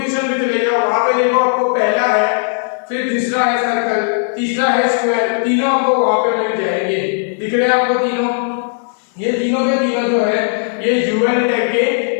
पे चले जाओ, वहां पे देखो आपको पहला है, फिर दूसरा है सर्कल, तीसरा है स्क्वायर, तीनों आपको वहां पे मिल जाएंगे। दिख रहे हैं आपको तीनों, ये तीनों के तीनों जो है ये यूएल टैग के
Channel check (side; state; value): right; silent; digital silence